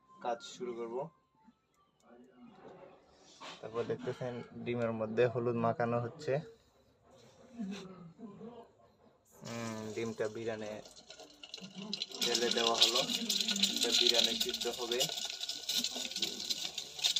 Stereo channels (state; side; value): identical; both; correlation 1.00